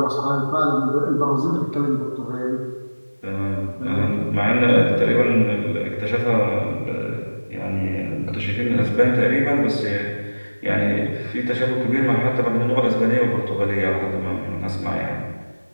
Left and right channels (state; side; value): inverted; both; correlation -1.00